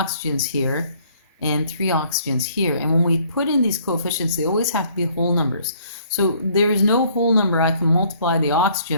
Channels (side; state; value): both; inverted; correlation -0.61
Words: here and 3 oxygens here. And when we put in these coefficients, they always have to be whole numbers. So there is no whole number I can multiply the